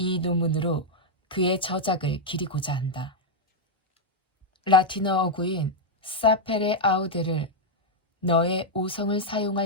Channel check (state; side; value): normal; both; correlation -0.01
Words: 논문으로 그의 저작을 기리고자 한다. 라틴어 어구인 사페레 아우데를 너의 오성을